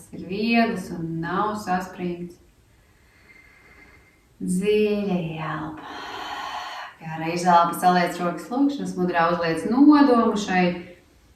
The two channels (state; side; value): identical; both; correlation 1.00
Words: ir viegls un nav saspringts. Dziļa ielpa. Gara izelpa, saliec rokas lūkšanas mudrā, uzliec nodomu šai